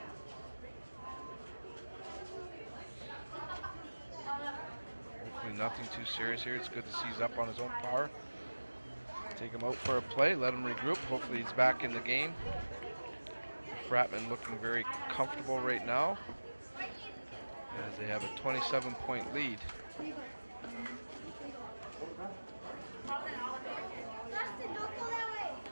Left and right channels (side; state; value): both; inverted; correlation -1.00